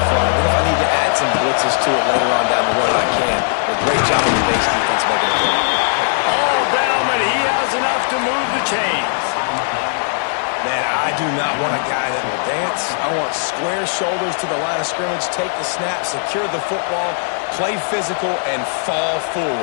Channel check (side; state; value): right; silent; digital silence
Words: front. What if I need to add some blitzes to it later on down the road? I can. A great job of the base defense making a play. All down, but he has enough to move the chains. Man, I do not want a guy that will dance. I want square shoulders to the line of scrimmage, take the snap, secure the football, play physical, and fall